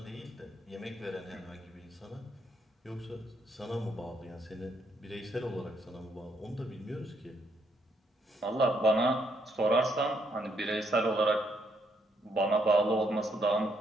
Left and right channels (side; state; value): both; normal; correlation 0.74